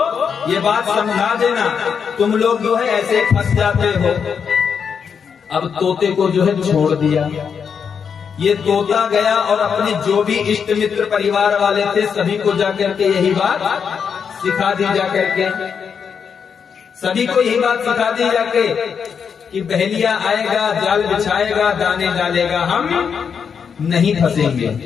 ये बात समझा देना, तुम लोग जो है ऐसे फंस जाते हो। अब तोते को जो है छोड़ दिया। ये तोता गया और अपने जो भी इष्ट मित्र परिवार वाले थे सभी को जाकर के यही बात सिखा दी जाकर के। सभी को यही बात सिखा दी जाके कि बहेलिया आएगा, जाल बिछाएगा, दाने डालेगा, हम नहीं फंसेंगे।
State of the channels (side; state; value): right; quieter; 6.7 dB